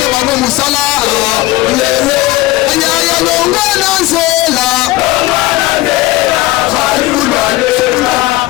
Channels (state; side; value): quieter; right; 18.7 dB